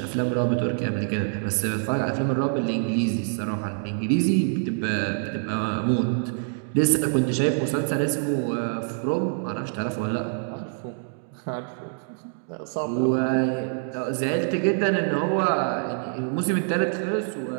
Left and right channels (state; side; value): silent; left; digital silence